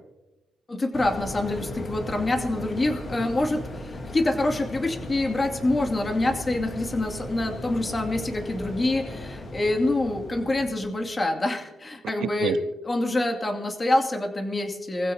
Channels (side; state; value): both; normal; correlation 0.92